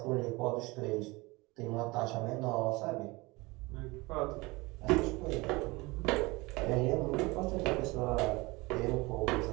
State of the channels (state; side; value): quieter; left; 23.5 dB